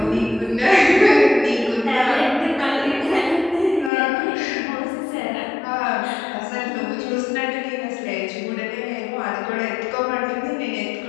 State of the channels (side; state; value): right; drops out; at 3.9 s